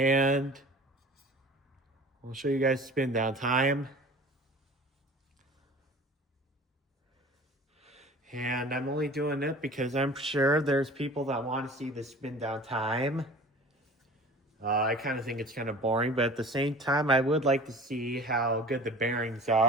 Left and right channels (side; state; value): both; normal; correlation 0.42